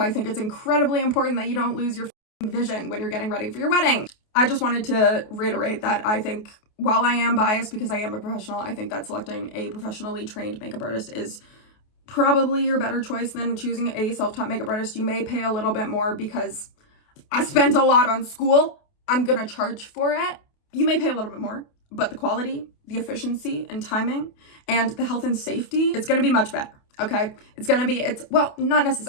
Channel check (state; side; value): late; right; 28 ms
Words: think it's incredibly important that you don't lose your vision when you're getting ready for your wedding. I just wanted to reiterate that I think, while I am biased because I am a professional, I think that selecting a professionally trained makeup artist is probably your better choice than choosing a self-taught makeup artist. You may pay a little bit more because I spent a lot on school. I'm gonna charge for it. You may pay a little bit more, but the quality, the efficiency and timing, and the health and safety, it's gonna be much better. Okay, not